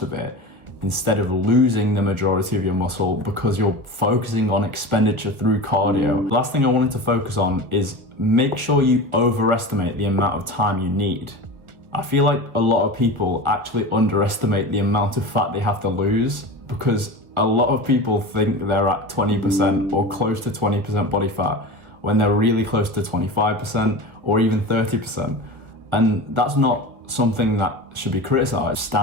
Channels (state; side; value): late; left; 1.6 ms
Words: of it instead of losing the majority of your muscle because you're focusing on expenditure through cardio. Last thing I wanted to focus on is make sure you overestimate the amount of time you need. I feel like a lot of people actually underestimate the amount of fat they have to lose because a lot of people think they're at 20% or close to 20% body fat when they're really close to 25% or even 30%. And that's not something that should be criticized.